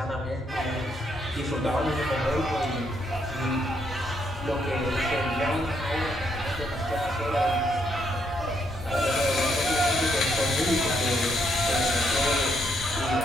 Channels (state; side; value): normal; both; correlation 0.75